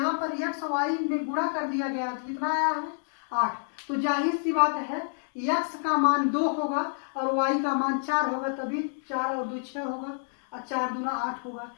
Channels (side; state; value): right; silent; digital silence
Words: पर एक्स वाई में गुणा कर दिया गया तो कितना आया है, 8। तो जाहिर सी बात है एक्स का मान 2 होगा और वाई का मान 4 होगा, तभी 4 और 2 6 होगा और 4 दूना 8 होगा।